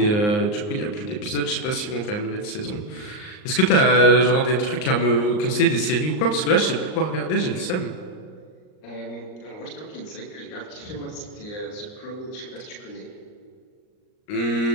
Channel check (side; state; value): right; late; 38 ms